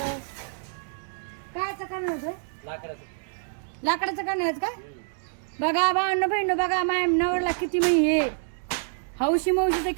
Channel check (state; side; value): silent; left; digital silence